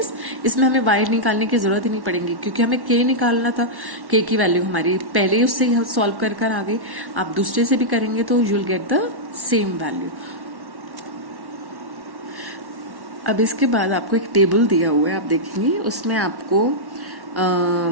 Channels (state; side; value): late; left; 1.1 ms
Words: इसमें हमें y निकालने की जरूरत ही नहीं पड़ेगी क्योंकि हमें k निकालना था। k की वैल्यू हमारी पहले उससे हम सॉल्व कर आ गई। आप दूसरे से भी करेंगे तो you will get the same value. अब इसके बाद आपको एक टेबल दिया हुआ है, आप देखेंगे उसमें आपको